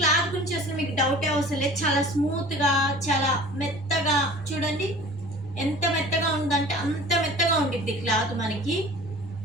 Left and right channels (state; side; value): normal; both; correlation 0.44